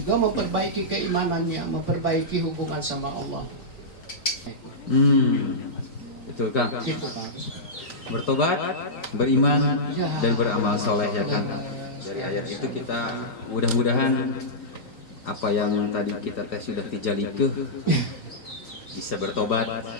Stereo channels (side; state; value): right; late; 3.9 ms